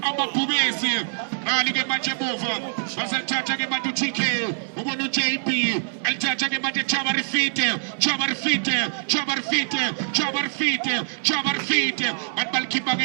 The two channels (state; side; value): silent; left; 57 dB below the other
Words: amabhubesi ali ke manje bova basathatha ke manje TK ubona uJP alithatha ke manje Chama Rifite atbalkipa ke